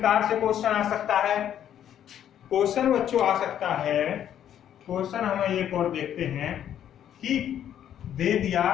से क्वेश्चन आ सकता है? क्वेश्चन बच्चों आ सकता है, क्वेश्चन हम एक और देखते हैं कि दे दिया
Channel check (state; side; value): quieter; right; 10.2 dB